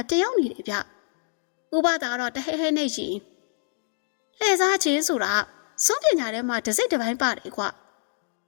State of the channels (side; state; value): right; silent; 61 dB below the other